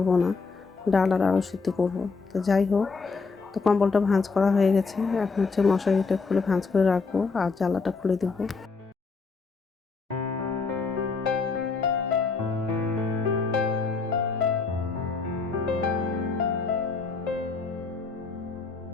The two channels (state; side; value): quieter; right; 4.5 dB